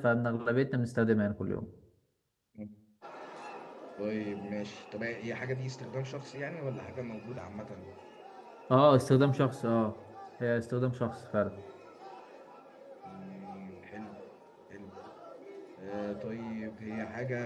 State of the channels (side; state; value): both; identical; correlation 1.00